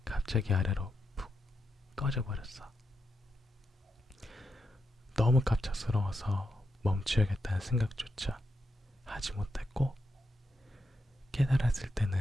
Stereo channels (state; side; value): normal; both; correlation 0.85